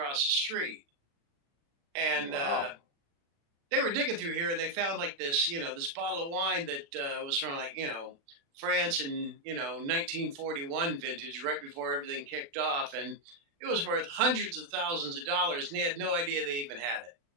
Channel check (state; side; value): late; left; 36 ms